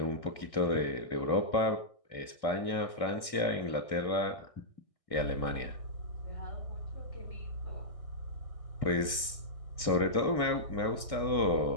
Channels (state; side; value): late; right; 2.3 ms